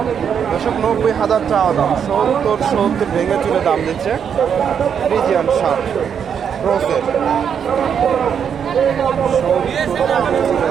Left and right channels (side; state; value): left; quieter; 7.7 dB